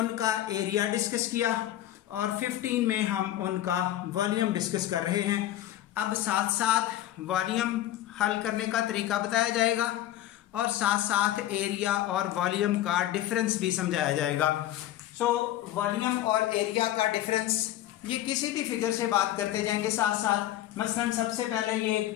एरिया डिस्कस किया और 15 में हम उनका वॉल्यूम डिस्कस कर रहे हैं। अब साथ साथ वॉल्यूम हल करने का तरीका बताया जाएगा और साथ साथ एरिया और वॉल्यूम का डिफरेंस भी समझाया जाएगा। सो वॉल्यूम और एरिया का डिफरेंस ये किसी भी फिगर से बात करते जाएंगे साथ साथ। मसलन सबसे पहले ये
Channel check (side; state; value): right; quieter; 13.5 dB